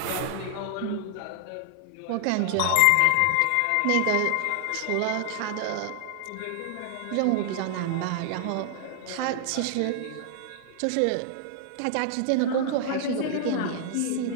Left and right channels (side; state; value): both; different; correlation 0.00